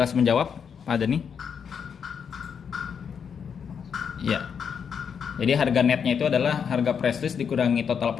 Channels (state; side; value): quieter; right; 7.0 dB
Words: menjawab, Pak Dani? Ya. Jadi harga netnya itu adalah harga press list dikurangi total